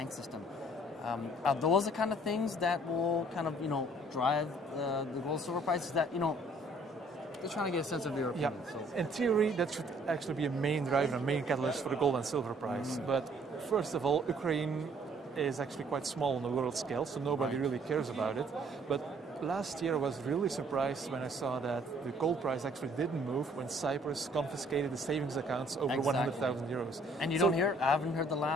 system. Are those the kind of things that will kind of drive the gold silver prices? That just trying to get a sense of your opinion. So. In theory, that should actually be a main driver, a main catalyst for the gold and silver price. But first of all, Ukraine is actually quite small on the world scale, so nobody really cares about it. But last year I was really surprised when I saw that the gold price actually didn't move when Cyprus confiscated the savings accounts over 100,000 euros. And you don't hear, I haven't heard the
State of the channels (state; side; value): normal; both; correlation 0.60